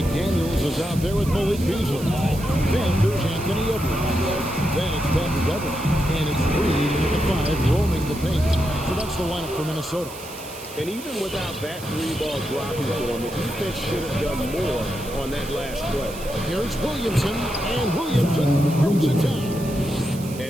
is out there with Malik Beasley. Then there's Anthony Edwards. Then it's Patrick Beverly. And it's Reed at the 5 roaming the paint. So that's the lineup for Minnesota. And even without that three-ball dropping for him, the defense should have done more on that last play. Here's Williamson, and Williamson throws it down.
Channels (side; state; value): right; noise; hiss, 15 dB below the sound